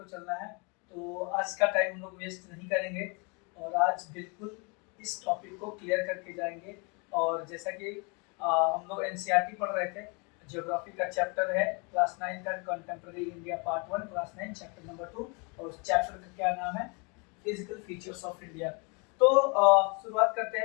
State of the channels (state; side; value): quieter; right; 32.6 dB